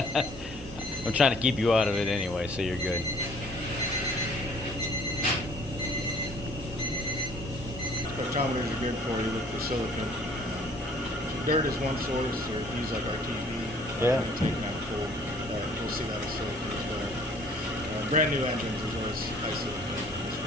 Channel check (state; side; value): normal; both; correlation 0.56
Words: I'm trying to keep you out of it anyway, so you're good. Spectrometers are good for you, look for silicon. Dirt is one source, or if you use like RTV, Yeah. taking out full, you'll see that as silicon as well. Brand new engines as well as high